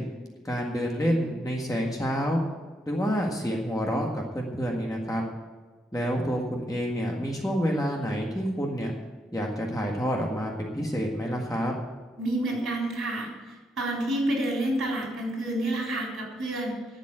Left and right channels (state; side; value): normal; both; correlation 0.79